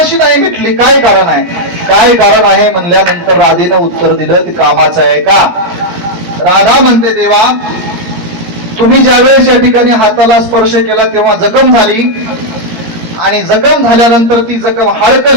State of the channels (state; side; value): late; left; 17 ms